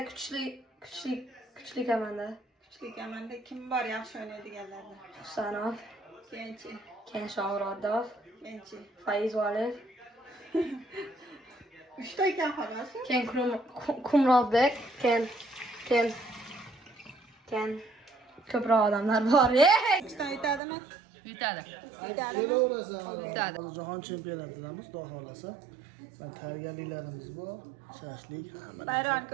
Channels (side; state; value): left; drops out; at 20.6 s